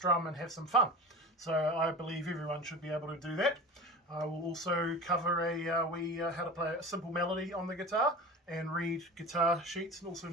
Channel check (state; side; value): normal; both; correlation 0.34